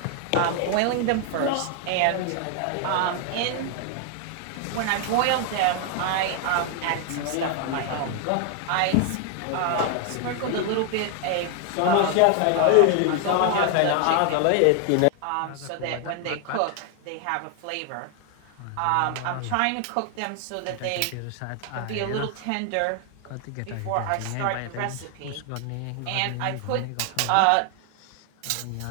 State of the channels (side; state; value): both; different; correlation 0.00